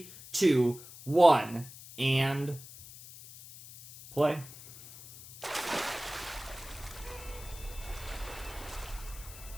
2, 1, and play.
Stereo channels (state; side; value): noise; left; hiss, 16 dB below the sound